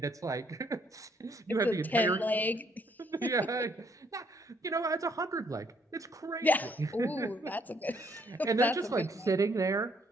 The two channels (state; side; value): normal; both; correlation 0.68